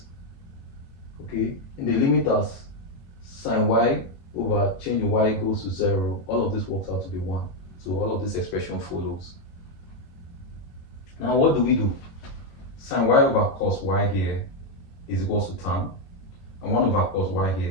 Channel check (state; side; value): late; right; 22 ms